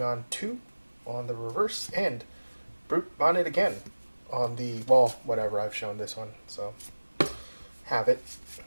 2 on the reverse, and Brute Bonnet again on the, well, whatever, I've shown this one, so have it.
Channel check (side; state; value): both; inverted; correlation -1.00